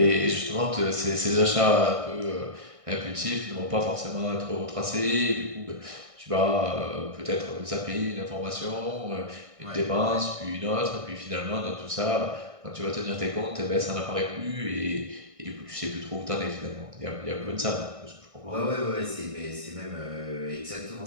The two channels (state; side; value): late; left; 1.6 ms